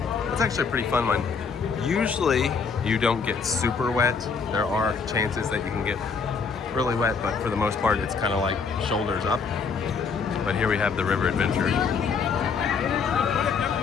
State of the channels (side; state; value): right; quieter; 5.5 dB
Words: It's actually a pretty fun one. Usually, you don't get super wet. There are chances that you can get really wet, but for the most part, it's kind of like shoulders up. But here we have the river adventure.